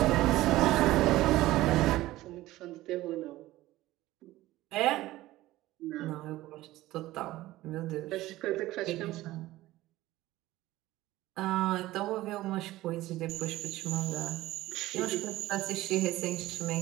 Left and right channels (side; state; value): left; quieter; 16.8 dB